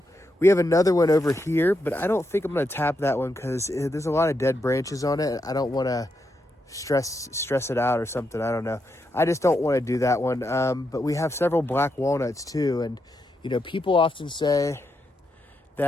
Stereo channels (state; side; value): normal; both; correlation 0.83